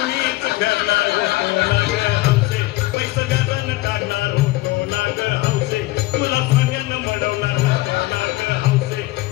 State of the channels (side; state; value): right; quieter; 19.1 dB